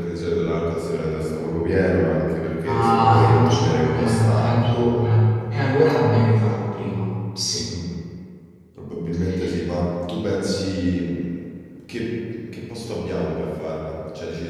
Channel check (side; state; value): both; identical; correlation 1.00